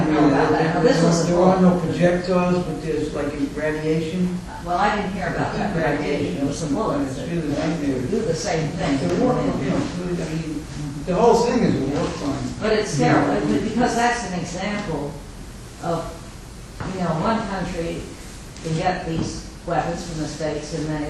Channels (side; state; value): both; identical; correlation 1.00